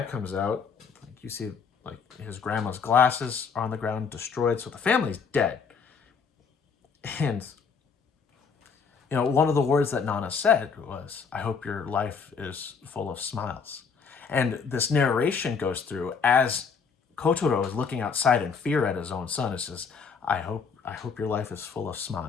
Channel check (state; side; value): quieter; right; 5.7 dB